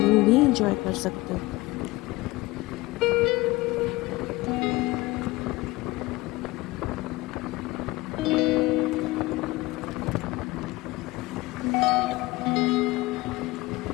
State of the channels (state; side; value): quieter; right; 20.6 dB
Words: भी एंजॉय कर सकते हो।